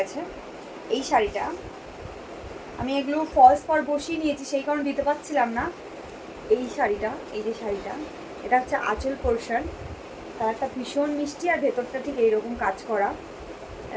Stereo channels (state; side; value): identical; both; correlation 1.00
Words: এই শাড়িটা। আমি এগুলো ফলস পার বসিয়ে নিয়েছি, সেই কারণে দিতে পারছিলাম না। এই শাড়িটা, এই যে শাড়িটা, এটা হচ্ছে আঁচল পোর্শন। কালারটা ভীষণ মিষ্টি আর ভেতরটা ঠিক এইরকম কাজ করা,